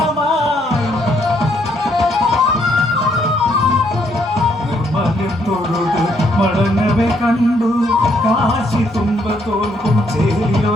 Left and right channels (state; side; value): normal; both; correlation 0.71